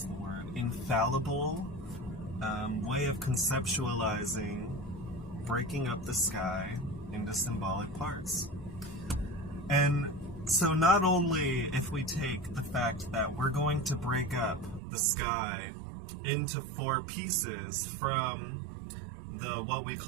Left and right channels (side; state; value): left; drops out; at 14.8 s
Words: infallible way of conceptualizing breaking up the sky into symbolic parts. And so not only if we take the fact that we're going to break up the sky into 4 pieces from what we